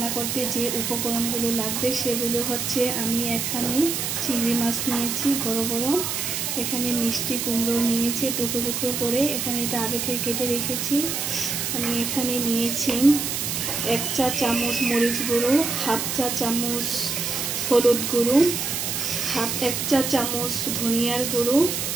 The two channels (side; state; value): right; noise; hiss, 2 dB below the sound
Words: করতে যে উপকরণগুলো লাগবে সেগুলো হচ্ছে, আমি এখানে চিংড়ি মাছ নিয়েছি বড় বড়, এখানে মিষ্টি কুমড়ো নিয়েছি টুকরো টুকরো করে, এখানে এটা আগে থেকে কেটে রেখেছি। আমি এখানে নিয়েছি 1 চা চামচ মরিচ গুঁড়ো, 1/2 চা চামচ হলুদ গুঁড়ো, 1 চা চামচ ধনিয়ার গুঁড়ো,